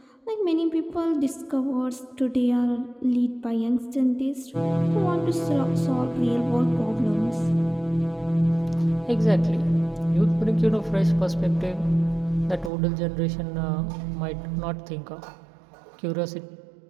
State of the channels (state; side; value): drops out; left; at 12.7 s